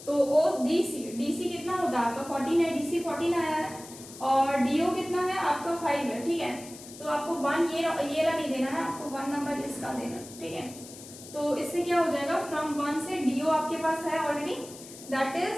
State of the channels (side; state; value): left; noise; hiss, 16 dB below the sound